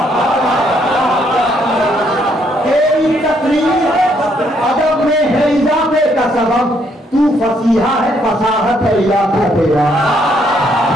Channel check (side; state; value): both; normal; correlation 0.71